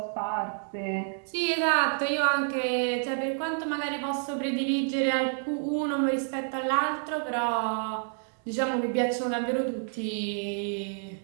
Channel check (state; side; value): silent; left; 58 dB below the other